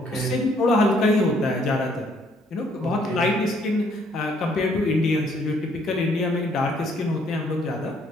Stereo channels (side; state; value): both; normal; correlation 0.66